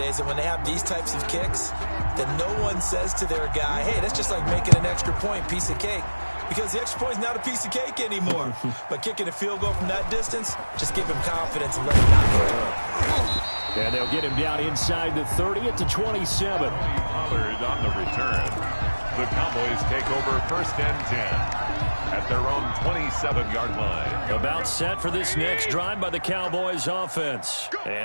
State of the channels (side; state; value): both; inverted; correlation -1.00